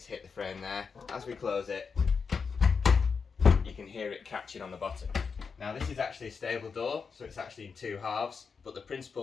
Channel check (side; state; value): right; quieter; 5.5 dB